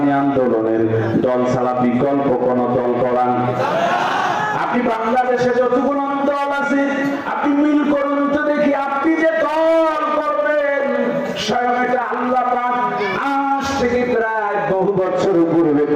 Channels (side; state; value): both; identical; correlation 1.00